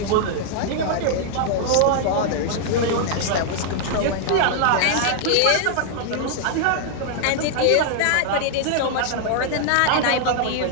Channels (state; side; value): different; both; correlation -0.01